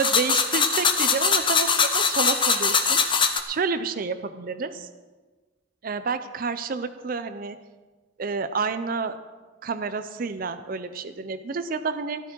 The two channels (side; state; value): both; normal; correlation 0.00